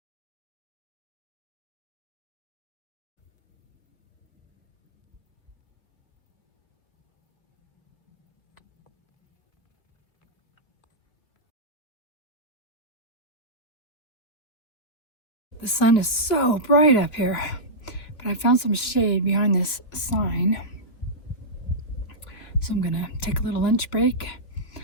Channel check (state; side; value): late; right; 2.7 ms